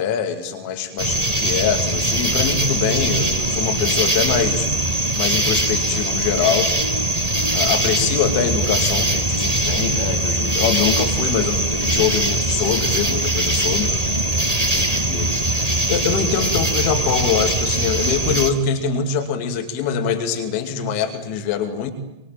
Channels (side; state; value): left; late; 1.8 ms